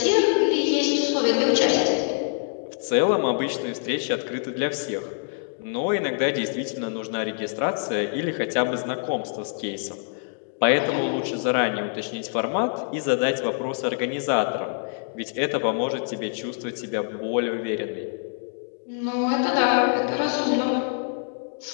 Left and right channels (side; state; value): right; silent; 62 dB below the other